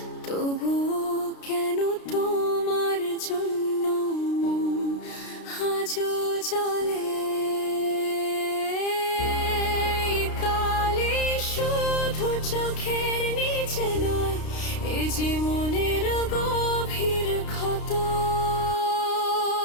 তবুও কেন তোমার জন্য মন আজও জ্বলে। এই কালি শুধু চোখের নিচে নয়, এই যে মনের গভীর ক্ষত।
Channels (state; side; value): late; right; 32 ms